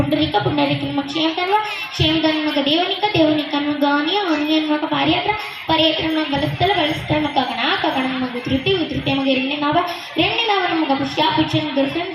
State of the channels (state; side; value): identical; both; correlation 1.00